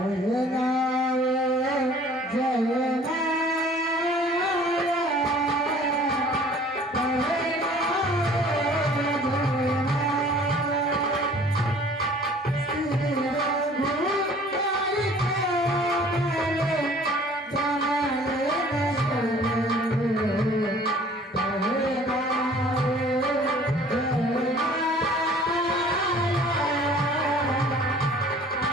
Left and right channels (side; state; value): both; normal; correlation 0.51